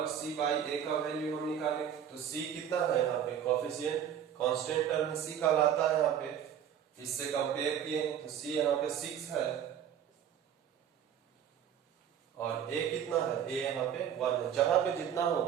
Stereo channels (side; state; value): left; quieter; 9.2 dB